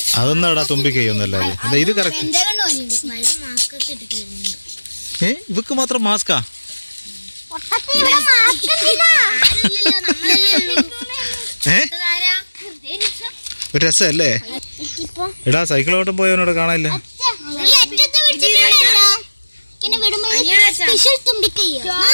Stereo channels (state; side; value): inverted; both; correlation -1.00